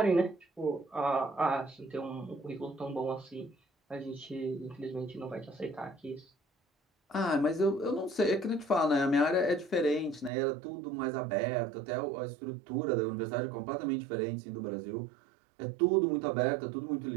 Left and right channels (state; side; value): drops out; left; at 10.3 s